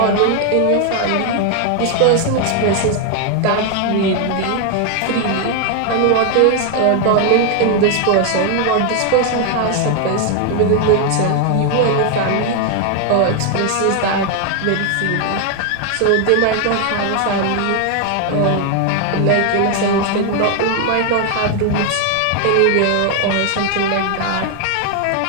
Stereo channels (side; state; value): both; different; correlation 0.00